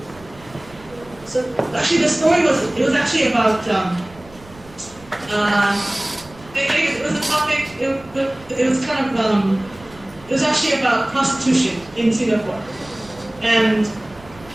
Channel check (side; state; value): right; noise; rumble, 23 dB below the sound